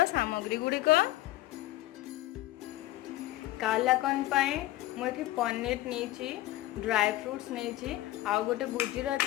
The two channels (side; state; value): right; quieter; 16.4 dB